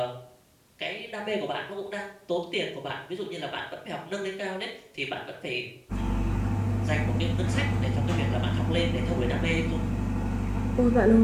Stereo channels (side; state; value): both; identical; correlation 1.00